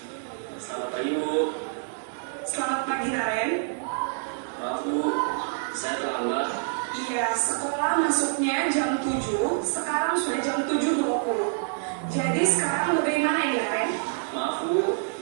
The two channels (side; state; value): left; silent; digital silence